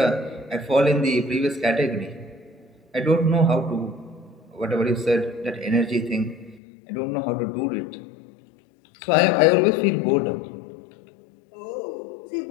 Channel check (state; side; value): drops out; right; at 6.6 s